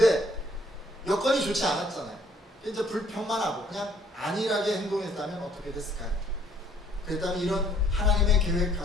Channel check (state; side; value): normal; both; correlation 0.63